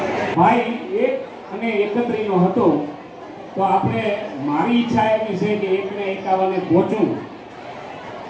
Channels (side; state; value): both; identical; correlation 1.00